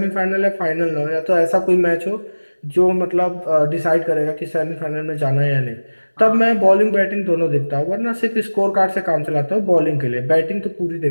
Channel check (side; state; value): both; inverted; correlation -1.00